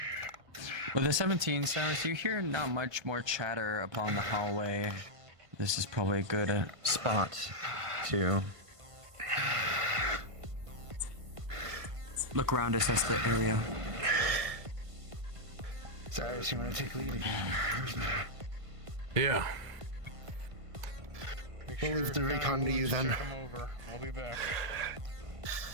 With the 17, Cyrus, you hear not much more chatter upon the hallway. This is probably a good spot to look around, assess the area. Cyrus, you want to take lead again? Yeah. We'll leave the recon to you then. Check him over. I'll be back.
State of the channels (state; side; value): late; left; 1.5 ms